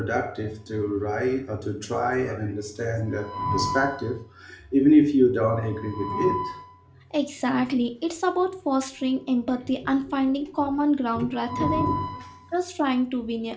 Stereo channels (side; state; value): both; identical; correlation 1.00